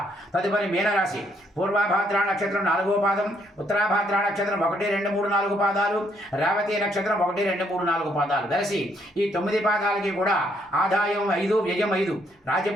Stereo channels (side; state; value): both; normal; correlation 0.71